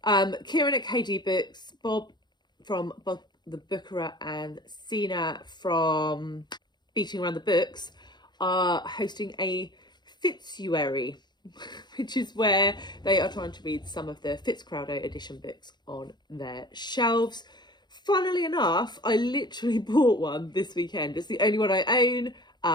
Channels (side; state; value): right; late; 0.21 ms